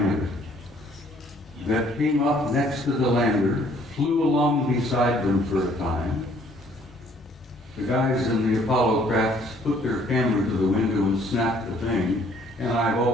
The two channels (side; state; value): both; normal; correlation 0.61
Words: that came up next to the lander, flew along beside them for a time. The guys in the Apollo crafts put their camera to the window and snapped the thing, and I've